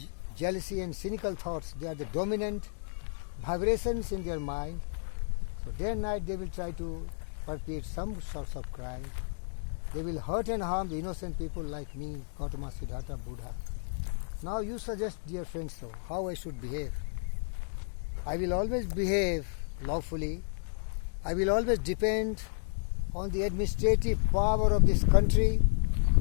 jealousy and cynical thoughts, they are the dominant vibrations in their mind. So day and night they will try to perpetrate some sorts of crime. They will hurt and harm the innocent people like me, Gautama, Siddhartha, Buddha. Now you suggest, dear friends, so how I should behave. I will always behave lawfully. I will always depend on the administrative power of this country,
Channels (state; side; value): silent; right; digital silence